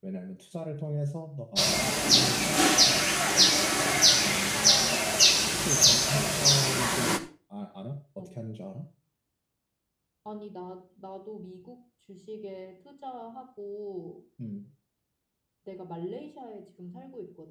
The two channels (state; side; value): identical; both; correlation 1.00